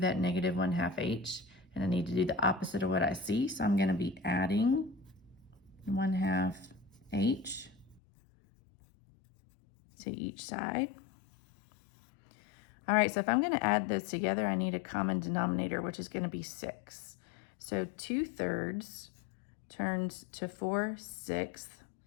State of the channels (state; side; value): drops out; right; at 8.0 s